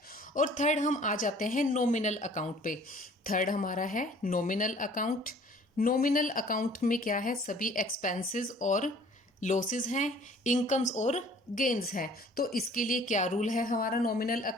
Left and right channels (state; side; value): normal; both; correlation 0.53